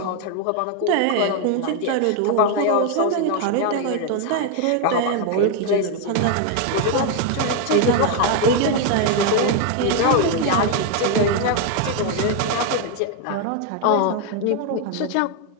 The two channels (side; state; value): both; different; correlation 0.01